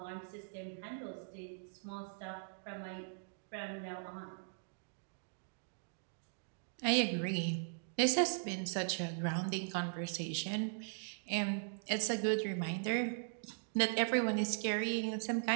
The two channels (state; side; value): silent; left; digital silence